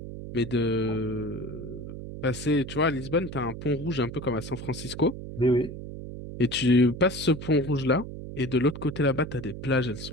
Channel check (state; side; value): noise; right; hum, 10 dB below the sound